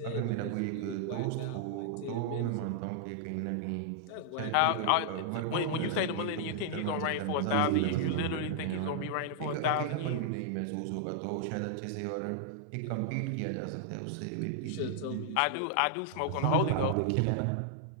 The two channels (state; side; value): different; both; correlation -0.01